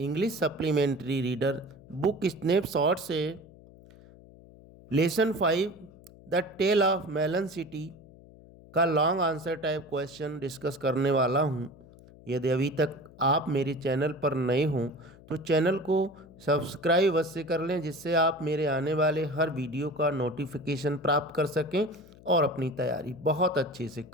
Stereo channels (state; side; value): noise; left; hum, 22 dB below the sound